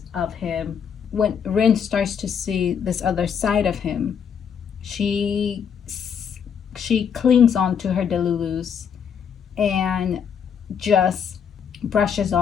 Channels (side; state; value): right; quieter; 7.4 dB